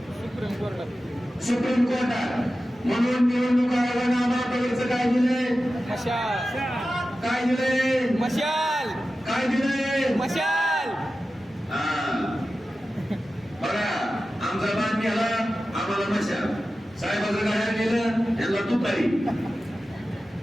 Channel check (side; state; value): both; normal; correlation 0.94